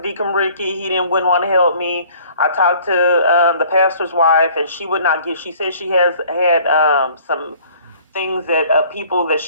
Deacon Ricky, wouldn't want to help me. I talked to the pastor's wife, and she would not give. She said she has had some things that people that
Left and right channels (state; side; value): inverted; both; correlation -0.54